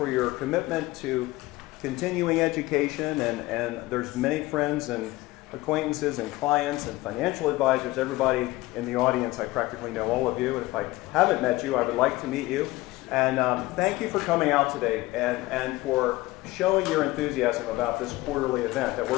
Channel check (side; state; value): right; quieter; 19.4 dB